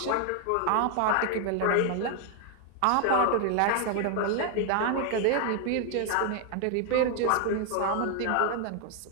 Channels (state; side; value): different; both; correlation 0.01